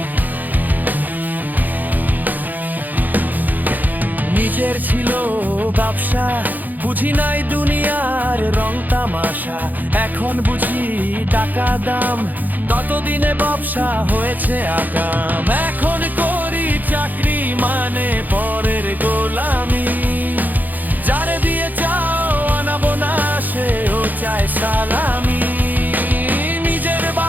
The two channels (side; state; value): left; late; 0.084 ms